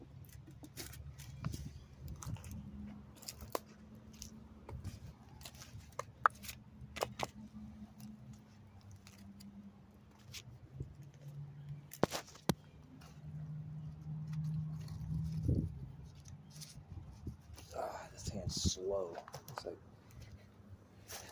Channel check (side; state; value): both; identical; correlation 1.00